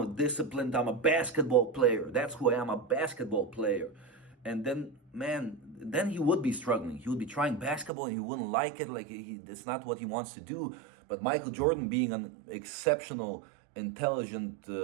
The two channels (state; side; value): drops out; left; at 7.9 s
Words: disciplined. I'm a basketball player. That's who I am, a basketball player. And then, man, then he would be struggling. He would be trying basketball and he wouldn't like it. Like, it's not what he wants to do. But Michael Jordan, being an exceptional, intelligent,